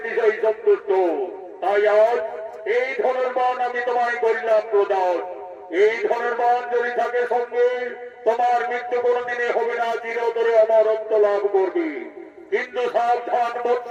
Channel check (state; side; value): identical; both; correlation 1.00